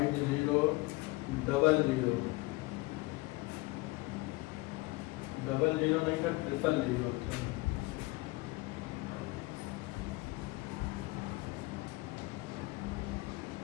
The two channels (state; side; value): quieter; right; 22.5 dB